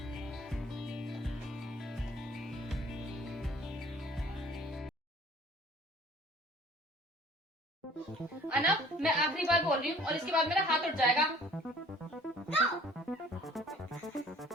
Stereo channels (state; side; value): normal; both; correlation 0.52